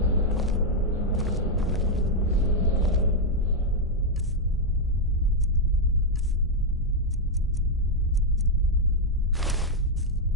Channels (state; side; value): normal; both; correlation -0.01